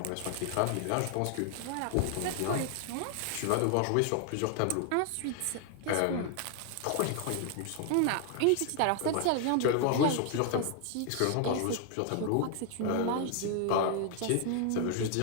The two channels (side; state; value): both; different; correlation 0.00